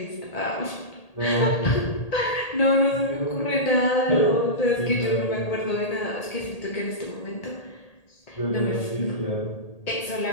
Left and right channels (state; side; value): late; right; 1.8 ms